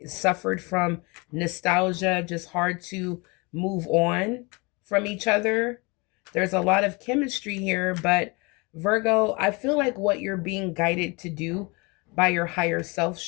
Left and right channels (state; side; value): quieter; right; 28.0 dB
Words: suffered from nostalgia, just hard to move on from each other. There's a lot of chemistry here, but Virgo, I feel like what you're being guided to do by your higher self